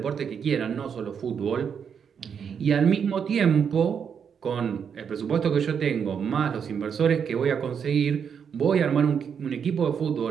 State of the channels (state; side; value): quieter; left; 7.2 dB